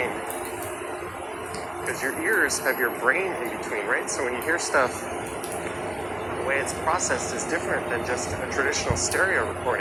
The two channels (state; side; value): noise; right; hum, 29 dB below the sound